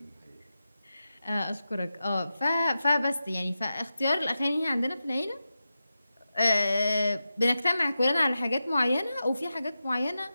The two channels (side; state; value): both; inverted; correlation -0.91